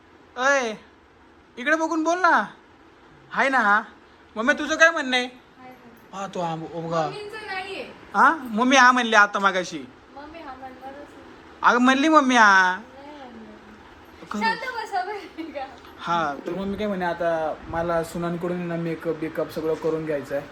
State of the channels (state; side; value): identical; both; correlation 1.00